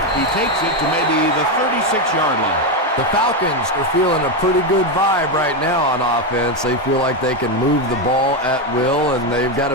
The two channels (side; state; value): both; normal; correlation 0.08